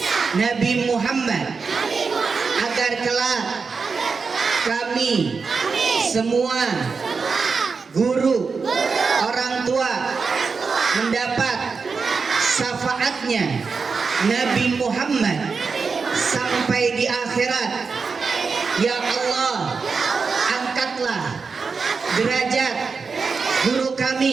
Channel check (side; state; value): left; quieter; 4.9 dB